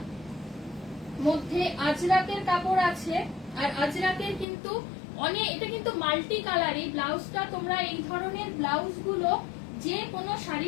মধ্যে আজরাকের কাপড় আছে, আর আজরাকের কিন্তু অনেক, এটা কিন্তু মাল্টি কালার। এই ব্লাউজটা তোমরা, এই ধরনের ব্লাউজ গুলো যে কোনো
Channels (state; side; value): drops out; right; at 4.5 s